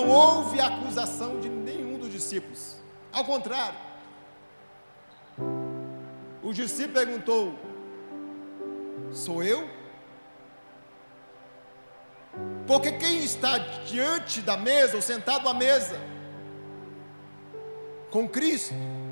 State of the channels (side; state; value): both; inverted; correlation -1.00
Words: houve acusação de nenhum dos discípulos, ao contrário, o discípulo perguntou: sou eu? Porque quem está diante da mesa, ou sentado à mesa com Cristo,